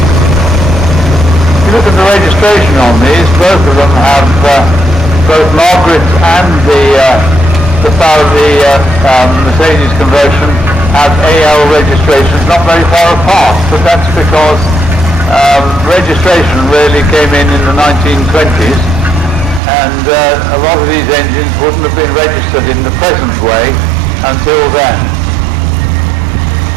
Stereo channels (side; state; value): left; drops out; at 19.6 s